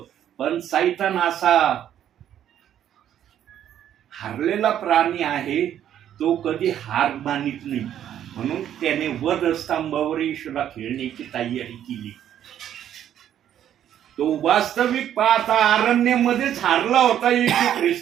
पण सैतान असा हारलेला प्राणी आहे, तो कधी हार मानित नाही. म्हणून त्याने वध स्तंभावर येशूला खेळण्याची तयारी केली. तो वास्तविक पाहता अरण्यामध्येच हारला होता येशू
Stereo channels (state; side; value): quieter; left; 10.5 dB